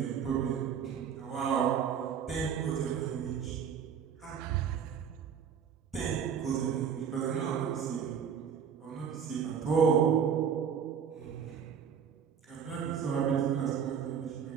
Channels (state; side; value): quieter; left; 7.5 dB